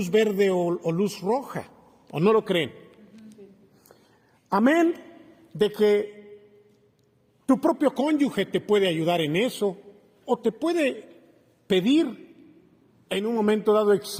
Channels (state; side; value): identical; both; correlation 1.00